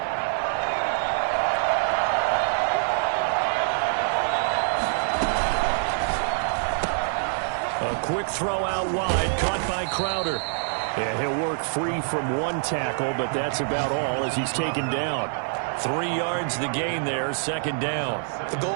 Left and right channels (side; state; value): left; silent; digital silence